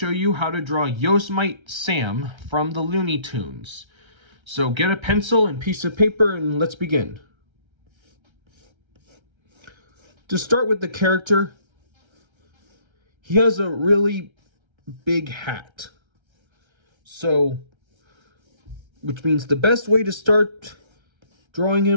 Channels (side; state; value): left; late; 1.3 ms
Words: you how to draw Yosemite Sam from the Looney Tunes. So get a pencil and piece of paper and let's begin. To start with the character, he has a really big hat. Which means the best way to start drawing